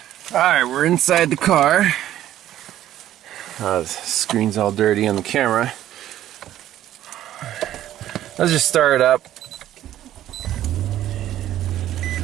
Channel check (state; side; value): quieter; left; 12.7 dB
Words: Alright, we're inside the car. The screen's all dirty on the camera. Let's just start it up.